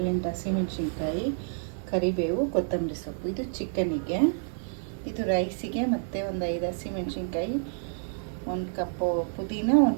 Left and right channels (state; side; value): silent; left; digital silence